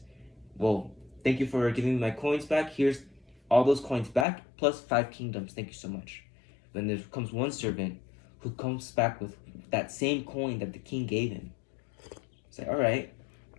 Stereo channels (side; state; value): right; drops out; at 4.2 s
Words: Well, thank you for giving me my coins back. Here's all those coins back plus 5 kingdoms. Thank you so much. Then there comes one servant who comes back with that same coin that the king gave him. It's like, all right,